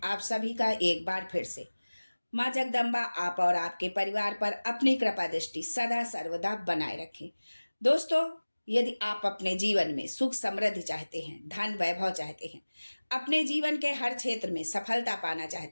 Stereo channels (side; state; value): both; inverted; correlation -1.00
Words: आप सभी का एक बार फिर से। माँ जगदम्बा आप और आपके परिवार पर अपनी कृपा दृष्टि सदा सर्वदा बनाए रखें। दोस्तों, यदि आप अपने जीवन में सुख समृद्धि चाहते हैं, धन वैभव चाहते हैं, अपने जीवन के हर क्षेत्र में सफलता पाना